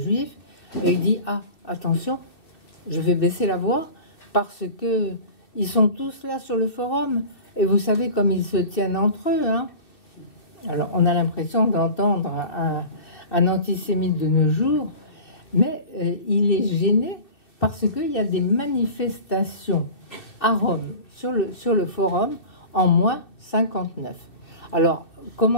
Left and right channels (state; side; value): late; right; 2.6 ms